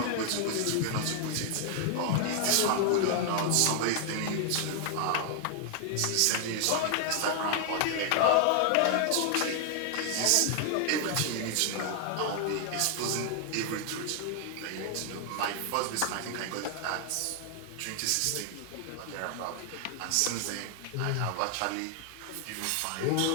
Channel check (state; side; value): different; both; correlation 0.00